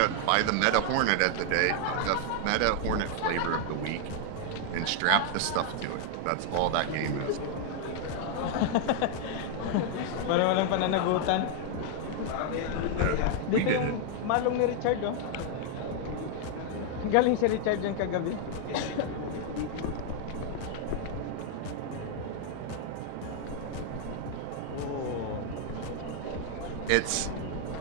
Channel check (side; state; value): both; different; correlation 0.00